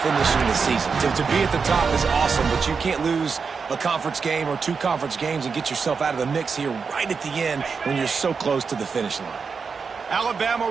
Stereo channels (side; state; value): left; quieter; 5.4 dB